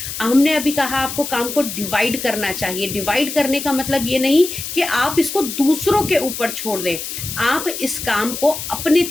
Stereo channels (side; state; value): left; noise; hiss, 7 dB below the sound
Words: हमने अभी कहा आपको काम को डिवाइड करना चाहिए। डिवाइड करने का मतलब ये नहीं कि आप इसको दूसरों के ऊपर छोड़ दें। आप इस काम को अपने